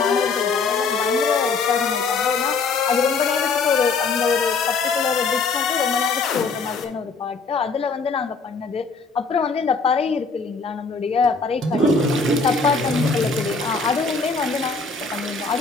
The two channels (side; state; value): right; quieter; 4.4 dB